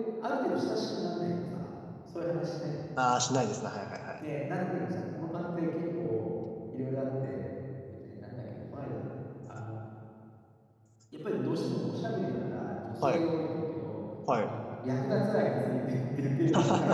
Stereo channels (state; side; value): identical; both; correlation 1.00